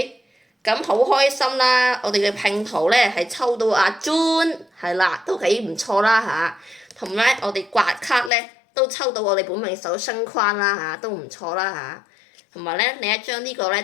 咁好開心啦！我哋嘅拼圖咧係抽到阿 June，係啦，都幾唔錯啦嚇。同埋我哋刮卡咧都抽到我哋本命手星框啦嚇，都唔錯啦嚇。同埋咧另一張呢個咧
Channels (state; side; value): drops out; right; at 8.3 s